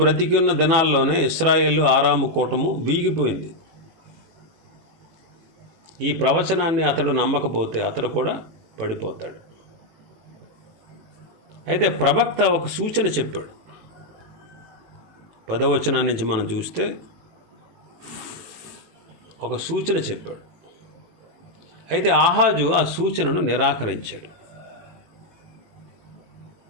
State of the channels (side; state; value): left; late; 18 ms